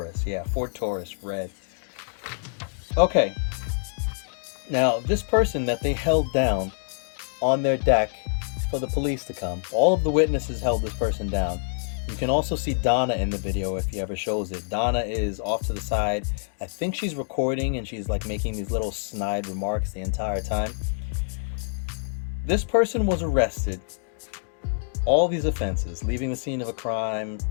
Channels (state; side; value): silent; right; digital silence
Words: yeah, Ford Taurus, red. Okay. Now this person that they held down on their deck for the police to come. All of the witnesses held this person down. You can also see Donna in the video if he ever shows it. Donna is off to the side. I think she's recording and she's like making these little snide remarks the entire time. This person was arrested. All these offenses: leaving the scene of a crime,